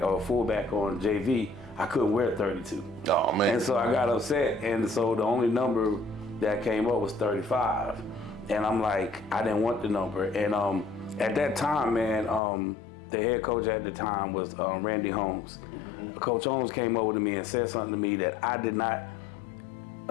or fullback on JV. I couldn't wear 32. Oh, man. And so I got upset. And so the only number that came up was 35. And I'm like, I didn't want the number. And at that time, man, the head coach at the time was Randy Holmes. Coach Holmes came over to me and said something to me that I did not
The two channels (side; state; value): right; drops out; at 12.4 s